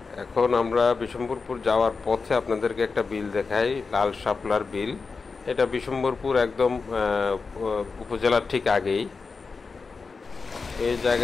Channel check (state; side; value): quieter; right; 4.6 dB